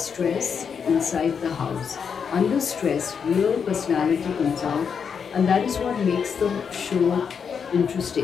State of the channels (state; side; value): quieter; right; 6.6 dB